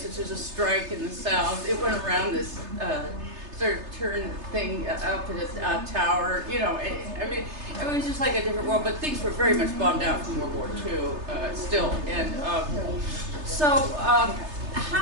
Which was a strike in the South. It went around this sort of turn thing up in a tower. I mean, it was just like a different world. But things were very much bombed out from World War II still. And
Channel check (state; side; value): late; left; 3.3 ms